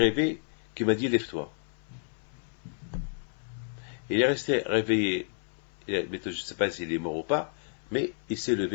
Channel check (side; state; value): right; silent; 57 dB below the other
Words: qui m'a dit, lève-toi. Il est resté réveillé. Je ne sais pas s'il est mort ou pas, mais il s'est